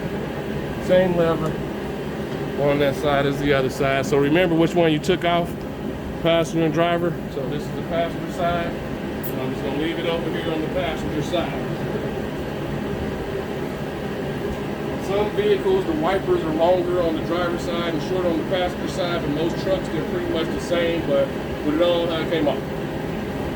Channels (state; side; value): identical; both; correlation 1.00